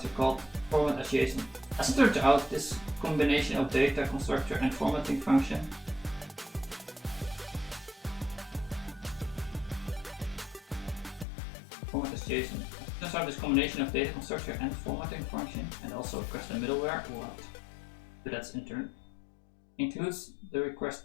called format as JSON. As it turns out, this combination of data constructor and formatting function format as JSON. Turns out this combination of data constructor and formatting function, and also custom middleware, what? But that's intern, includes the request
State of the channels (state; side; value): drops out; right; at 11.2 s